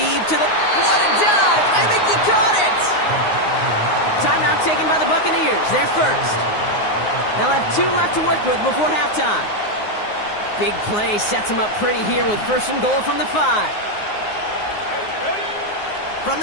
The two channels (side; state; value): right; late; 9.6 ms